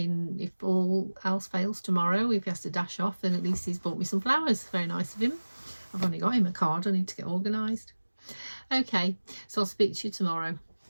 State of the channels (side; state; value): both; inverted; correlation -1.00